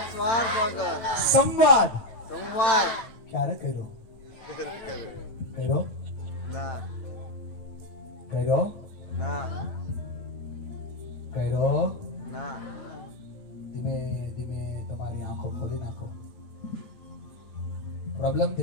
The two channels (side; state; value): right; late; 9.0 ms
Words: સ્વાર્થ વગર સંવાદ સંવાદ ક્યારે કર્યો? ના કર્યો ના ના ધીમે ધીમે તમારી આંખો ખોલી નાખો. પ્રોબ્લેમ